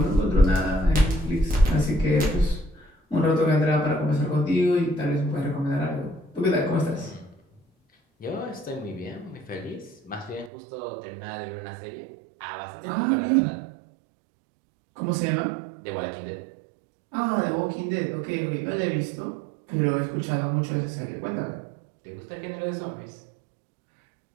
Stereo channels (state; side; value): drops out; left; at 10.5 s